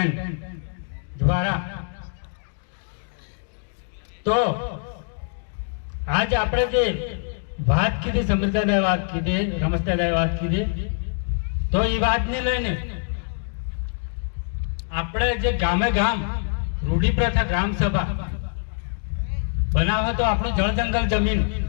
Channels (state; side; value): silent; right; digital silence